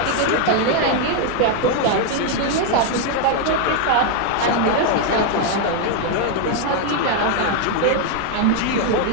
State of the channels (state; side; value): different; both; correlation 0.00